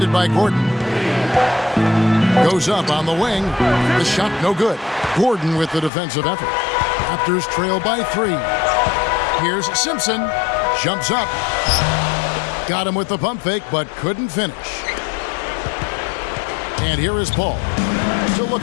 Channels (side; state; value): right; drops out; at 5.9 s